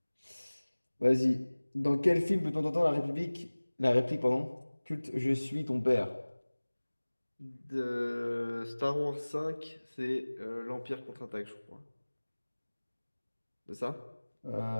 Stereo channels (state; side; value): inverted; both; correlation -1.00